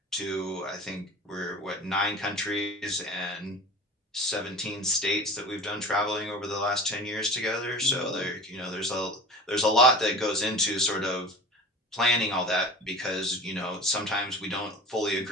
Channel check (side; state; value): both; normal; correlation 0.37